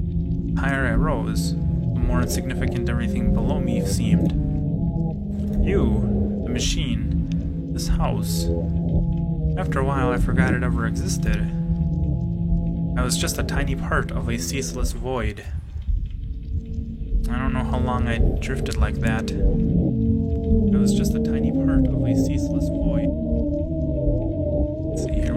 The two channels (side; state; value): both; identical; correlation 1.00